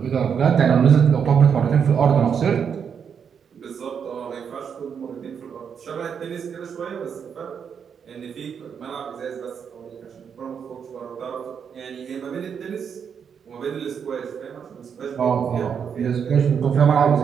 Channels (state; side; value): quieter; left; 7.2 dB